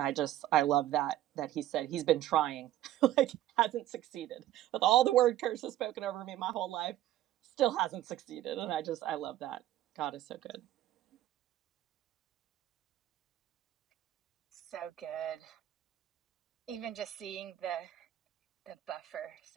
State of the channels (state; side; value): quieter; left; 13.4 dB